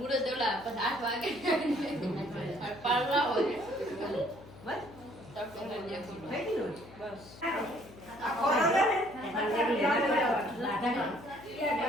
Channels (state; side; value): noise; left; hum, 19 dB below the sound